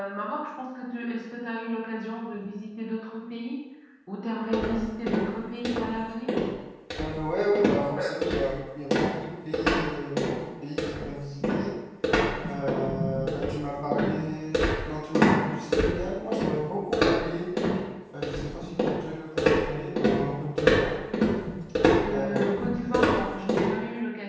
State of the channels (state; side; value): identical; both; correlation 1.00